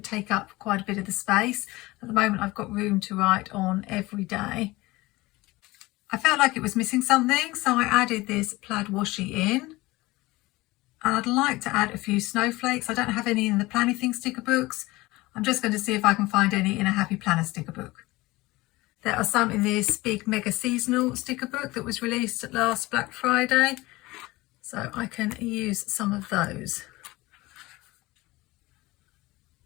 take up quite a bit of the space. At the moment, I've got room to write on every day. I felt like it was missing something, so I added this plaid washi in. And I'd like to add a few snowflakes. I don't have any in the Planything sticker books. I'm just going to see if I can find any in a Happy Planner sticker book. There are some in this big mega seasonal sticker book that was released last Black Friday, so I can use some of those.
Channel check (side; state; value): right; quieter; 20.5 dB